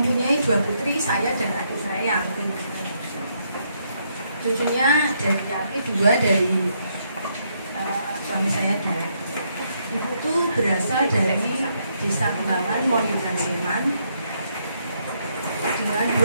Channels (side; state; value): both; inverted; correlation -0.75